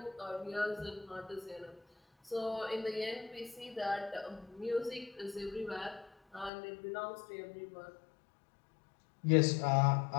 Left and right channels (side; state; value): right; drops out; at 6.5 s